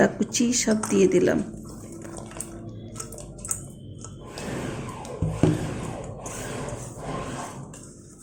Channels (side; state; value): both; identical; correlation 1.00